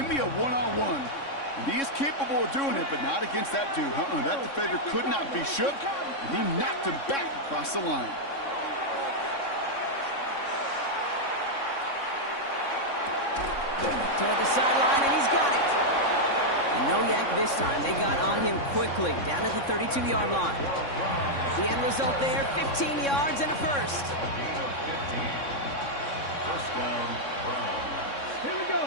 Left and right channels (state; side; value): late; right; 3.6 ms